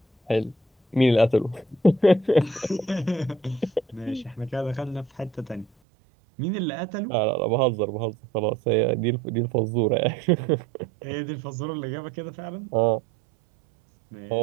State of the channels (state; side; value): drops out; left; at 5.7 s